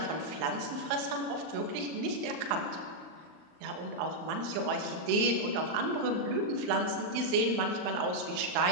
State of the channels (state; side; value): late; left; 39 ms